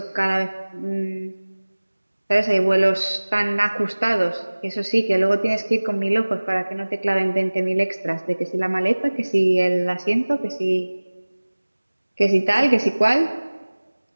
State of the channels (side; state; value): both; inverted; correlation -1.00